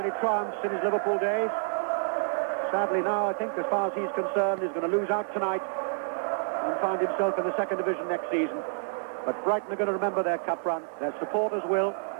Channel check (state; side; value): silent; left; digital silence